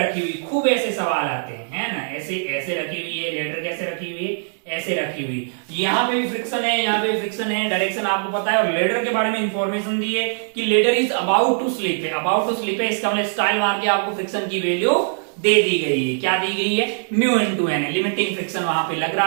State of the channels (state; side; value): silent; left; digital silence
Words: हुई, खूब ऐसे सवाल आते हैं, है ना, ऐसे ऐसे रखी हुई है, लेडर कैसे रखी हुई है, ऐसे रखी हुई, यहाँ पे भी फ्रिक्शन है, यहाँ पे भी फ्रिक्शन है, डायरेक्शन आपको पता है, और लेडर के बारे में इंफॉर्मेशन दी है कि ladder is about to slip है, अबाउट टू स्लिप है, इसका मतलब स्टाइल मार के आपको फ्रिक्शन की वैल्यू दे दी गई है, क्या दी गई है, mu into N, limiting friction वहां पे लग